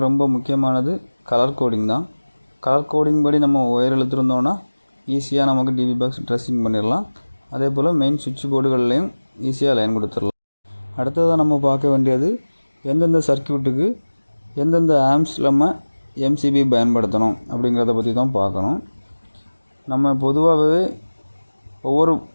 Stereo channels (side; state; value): both; inverted; correlation -1.00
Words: ரொம்ப முக்கியமானது கலர் கோடிங் தான். கலர் கோடிங் படி நம்ம ஒயர் இழுத்துருந்தோன்னா ஈஸியாக நமக்கு டிபி பாக்ஸ் ட்ரெஸ்ஸிங் பண்ணிடலாம். அதே போல் மெயின் சுவிட்ச் போர்டுகள்லையும் ஈஸியாக லைன் கொடுத்துடலாம். அடுத்ததாக நம்ம பார்க்க வேண்டியது எந்தெந்த சர்க்யூட்டுக்கு எந்தெந்த ஆம்ஸ் நம்ம எம்சிபி பயன்படுத்தணும் அப்படிங்கிறத பற்றி தான் பார்க்கணும். நம்ம பொதுவாகவே ஒவ்வொரு